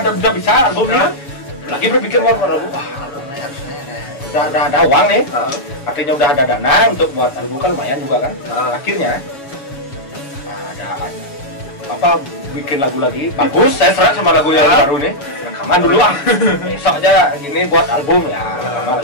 bisa albumnya, lagi berpikir mau lagu, albumnya harusnya udah ada uang nih, artinya udah ada dana untuk buat album kan lumayan juga kan. Akhirnya ada bikin lagu lagi bagus, saya serak sama lagu yang baru nih, rekaman dulu besok aja gini buat album ya,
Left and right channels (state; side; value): late; right; 7.2 ms